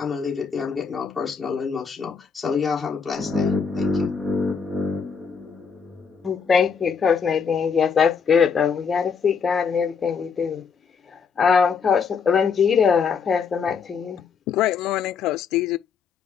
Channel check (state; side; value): quieter; right; 6.0 dB